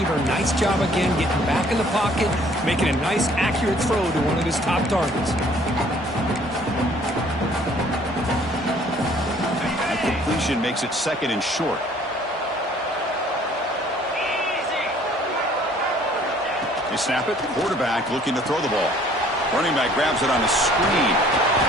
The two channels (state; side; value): normal; both; correlation 0.57